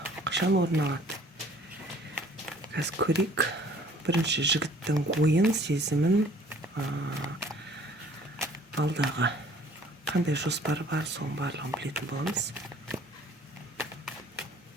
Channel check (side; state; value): both; normal; correlation 0.55